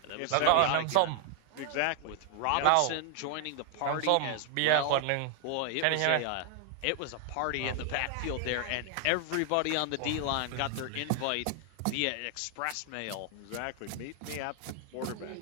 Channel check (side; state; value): both; different; correlation 0.00